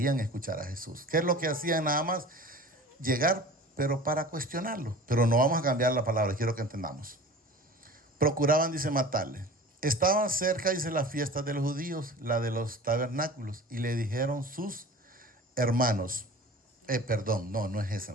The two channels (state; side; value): normal; both; correlation 0.40